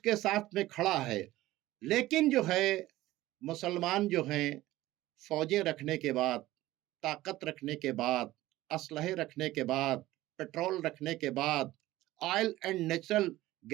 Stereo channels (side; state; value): left; quieter; 16.6 dB